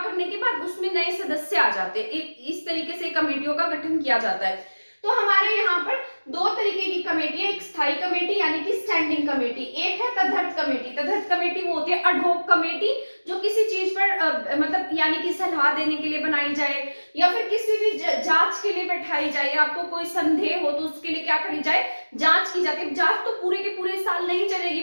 के बाद उसमें नए सदस्य आ जाते हैं। इस तरीके से कमेटियों का गठन किया जाता है। तो हमारे यहाँ पर दो तरीके की कमेटी है, एक स्थायी कमेटी यानी कि स्टैंडिंग कमेटी, एक है तदर्थ कमेटी। तदर्थ कमेटी वो होती है एडहॉक कमेटी, जो किसी चीज पर मतलब यानी कि सलाह देने के लिए बनाई जाए या फिर किसी भी जांच के लिए बैठाई जाए, आपको कोई संदेह हो तो उसके लिए क्या करी जाए, जांच की जाती है। जांच तो पूरे के पूरे साल नहीं चलेगी,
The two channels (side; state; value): both; inverted; correlation -1.00